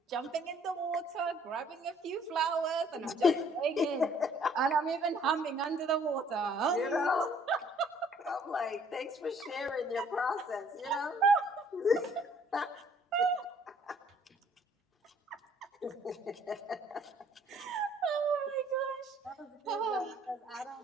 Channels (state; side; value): normal; both; correlation 0.60